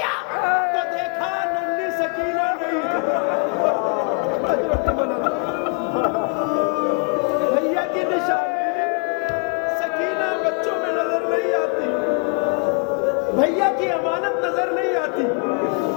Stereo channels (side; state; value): right; quieter; 36.9 dB